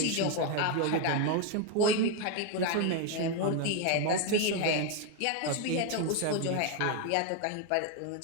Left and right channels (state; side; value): different; both; correlation 0.01